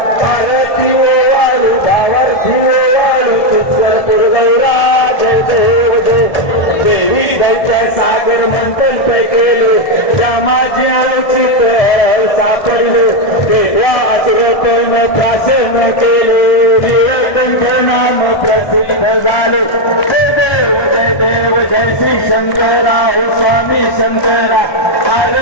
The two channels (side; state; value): right; late; 1.7 ms